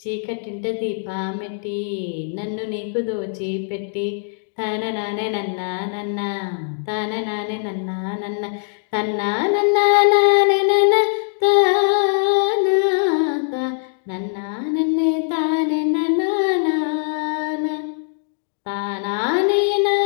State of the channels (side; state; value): right; silent; digital silence